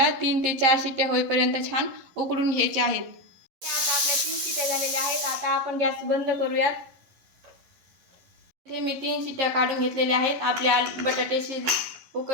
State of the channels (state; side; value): late; left; 11 ms